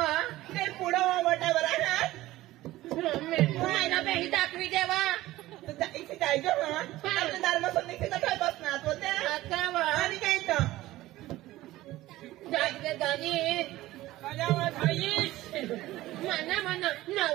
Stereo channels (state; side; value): quieter; left; 16.7 dB